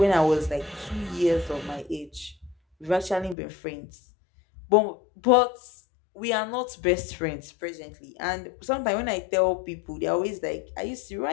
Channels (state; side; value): drops out; right; at 3.4 s